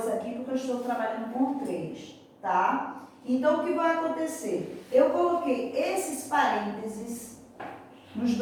aqui porque eu estou trabalhando com 3, tá? Então, o que vai acontecer? Eu coloquei esses parênteses nos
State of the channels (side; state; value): both; identical; correlation 1.00